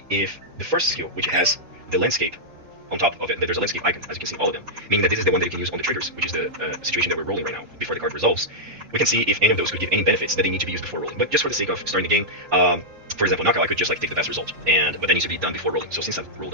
if the first skill, which has the landscape on top of it, there's a landscape icon, as you can see, all of them, meaning that this is the one that you can use on the triggers, which is the situation that we're rolling right now, before the card resolves. We can see if any of those could give any benefits that they need to be used before rolling. But just for the sake of starting the game, for example, knockout, I could just like take the best result, but that needs to be done before rolling. So since I've rolled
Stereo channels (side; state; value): left; late; 3.7 ms